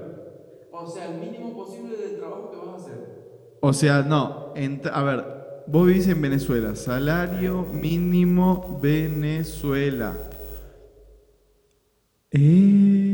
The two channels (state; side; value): identical; both; correlation 1.00